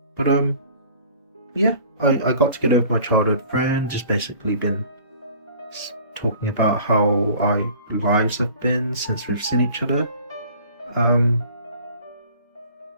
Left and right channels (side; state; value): both; inverted; correlation -0.48